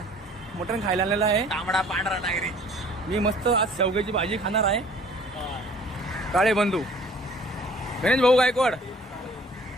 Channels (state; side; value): normal; both; correlation 0.52